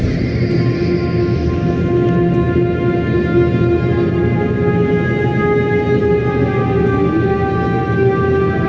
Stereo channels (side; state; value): both; identical; correlation 1.00